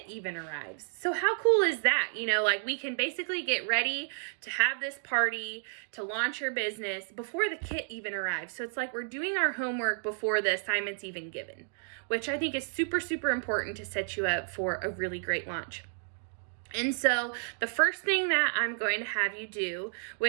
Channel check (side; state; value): left; silent; digital silence